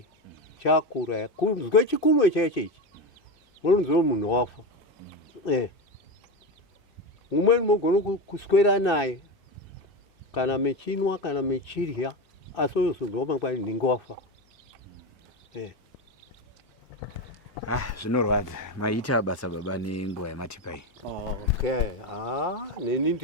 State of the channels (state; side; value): normal; both; correlation 0.18